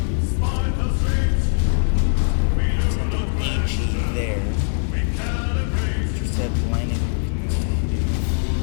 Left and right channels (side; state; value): right; silent; digital silence